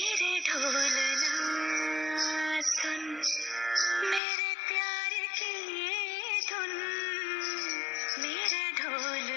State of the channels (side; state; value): right; drops out; at 4.2 s